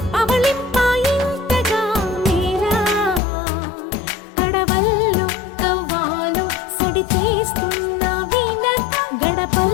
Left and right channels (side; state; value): right; drops out; at 3.2 s